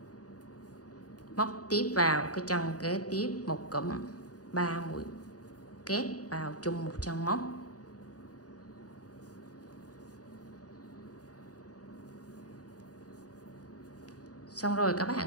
móc tiếp vào cái chân kế tiếp một cụm 3 mũi kép vào chung một chân móc. Xong rồi các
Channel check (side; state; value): right; late; 0.68 ms